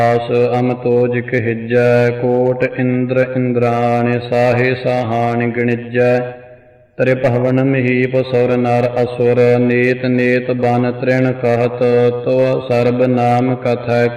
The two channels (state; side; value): identical; both; correlation 1.00